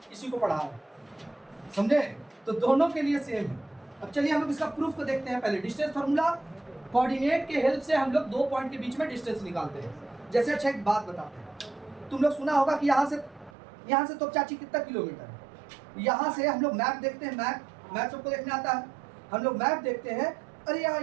इसी को पढ़ा है, समझे? तो दोनों के लिए सेम है। अब चलिए हम लोग इसका प्रूफ को देखते हैं। पहले डिस्टेंस फार्मूला, कोऑर्डिनेट के हेल्प से हम लोग दो पॉइंट के बीच में डिस्टेंस निकालते हैं। जैसे अच्छा एक बात बताते हैं, तुम लोग सुना होगा कि यहाँ से तो चाची कितना किलोमीटर है। यहाँ से हम लोग मैप देखते हैं, मैप सबको देखने आता है। हम लोग मैप देखते हैं, अरे यार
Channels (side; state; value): left; drops out; at 13.5 s